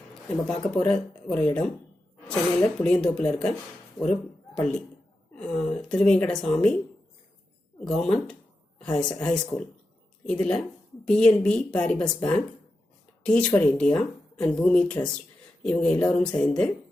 நம்ம பார்க்க போகிற ஒரு இடம் சென்னையில் புளியந்தோப்பில் இருக்க ஒரு பள்ளி, திருவேங்கடசாமி கவர்மெண்ட் ஹை ஸ்கூல். இதில் BNP Paribas bank, Teach For India and Bhumi trust இவங்க எல்லோரும் சேர்ந்து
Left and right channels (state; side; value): normal; both; correlation 0.90